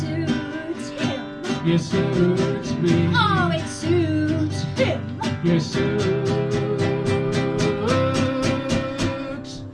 him. you suits me, Oh, it suits him. you suits me.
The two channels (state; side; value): identical; both; correlation 1.00